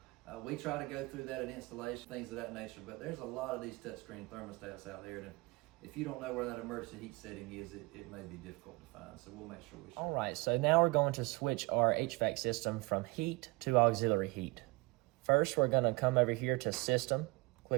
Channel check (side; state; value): left; quieter; 25.1 dB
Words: We try to go through that in installation, things of that nature, but there's a lot of these touchscreen thermostats out there, and if you don't know where that emergency heat setting is, it may be difficult to find, so we'll make sure we show. All right, so now we're going to switch our HVAC system from heat to auxiliary heat. First, we're going to come over here to System,